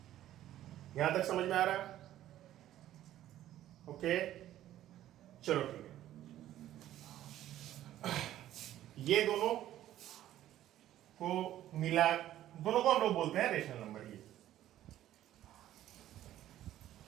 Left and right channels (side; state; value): left; quieter; 13.0 dB